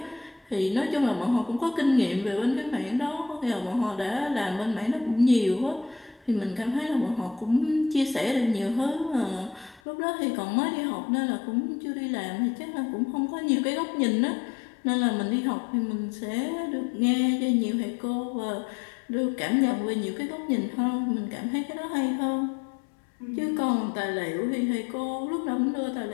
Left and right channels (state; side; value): drops out; right; at 9.8 s